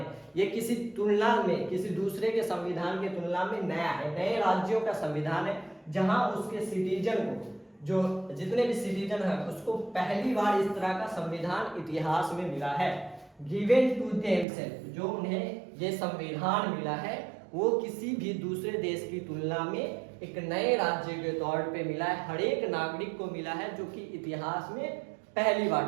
ये किसी तुलना में, किसी दूसरे के संविधान की तुलना में नया है, नए राज्यों का संविधान है, जहां उसके सिटीजन को, जो जितने भी सिटीजन है, उसको पहली बार इस तरह का संविधान इतिहास में मिला है। गिवन टू देमसेल्फ, जो उन्हें ये संविधान मिला है, वो किसी भी दूसरे देश की तुलना में एक नए राज्य के तौर पे मिला है, हर एक नागरिक को मिला है, जो कि इतिहास में पहली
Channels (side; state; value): left; drops out; at 14.5 s